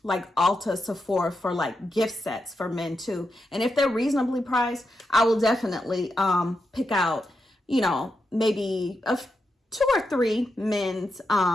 like Ulta, Sephora for like gift sets for men too. And if they're reasonably priced, I will definitely pick out, you know, maybe 2 or 3 men's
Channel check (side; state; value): both; normal; correlation 0.86